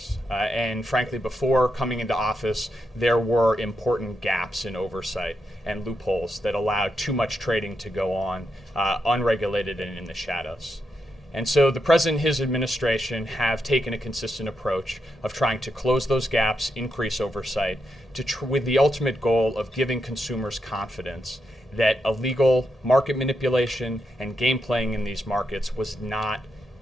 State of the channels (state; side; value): normal; both; correlation 0.84